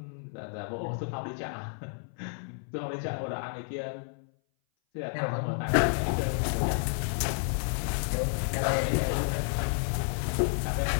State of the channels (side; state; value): right; silent; 57 dB below the other